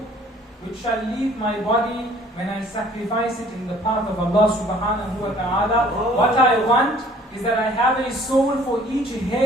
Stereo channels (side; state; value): both; normal; correlation 0.55